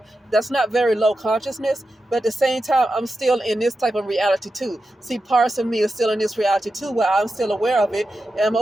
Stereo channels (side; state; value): both; normal; correlation 0.90